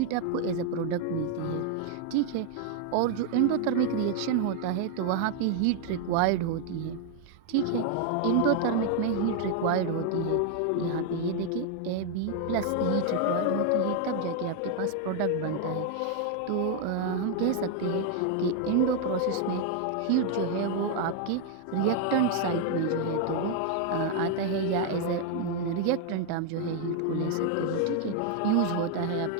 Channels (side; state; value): both; different; correlation 0.00